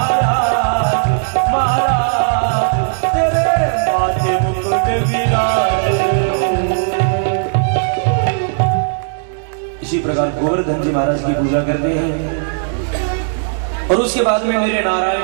महाराज तेरे माथे मुकुट विराज। इसी प्रकार गोवर्धन जी महाराज की पूजा करते हैं और उसके बाद में मेरे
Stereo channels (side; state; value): left; silent; 67 dB below the other